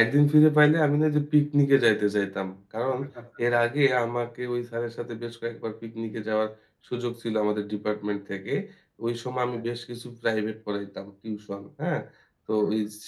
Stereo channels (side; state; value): both; identical; correlation 1.00